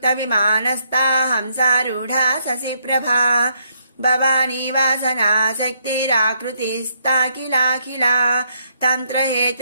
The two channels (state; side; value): inverted; both; correlation -0.72